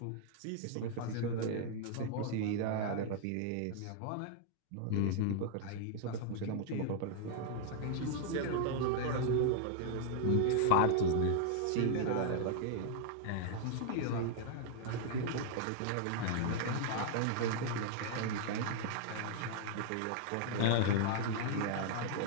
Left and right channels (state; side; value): different; both; correlation -0.01